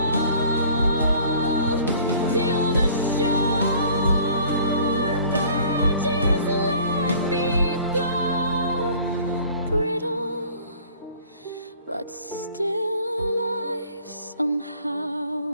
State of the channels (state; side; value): inverted; both; correlation -0.51